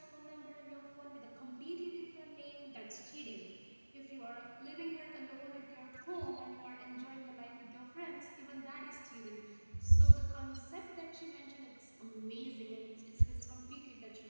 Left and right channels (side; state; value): both; inverted; correlation -1.00